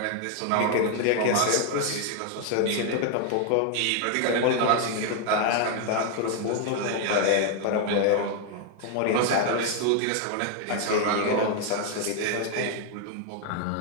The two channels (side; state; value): both; different; correlation 0.00